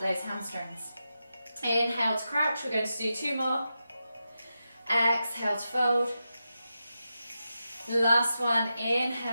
hamstrings. Inhale to crouch. We're going to do 2 more. Exhale to fold. Last one,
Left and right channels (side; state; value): both; inverted; correlation -0.89